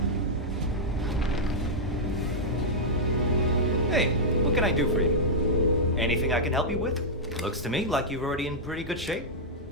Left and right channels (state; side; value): normal; both; correlation -0.07